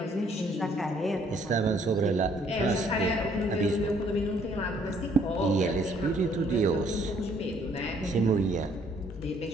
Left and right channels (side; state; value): both; normal; correlation 0.64